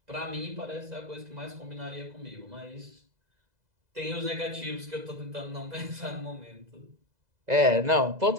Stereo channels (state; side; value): late; left; 2.0 ms